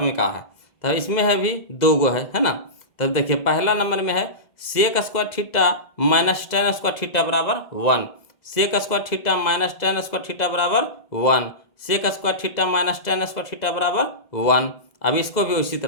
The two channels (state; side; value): late; right; 2.0 ms